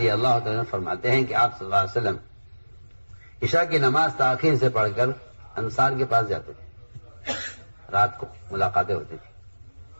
اللہ تعالیٰ فرماتے ہیں کہ آپ صلی اللہ علیہ وسلم عشاء کی نماز تاخیر سے پڑھ کر انصار کے پاس جاتے تھے. رات کو ملاقاتیں ہوتی تھی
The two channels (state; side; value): inverted; both; correlation -1.00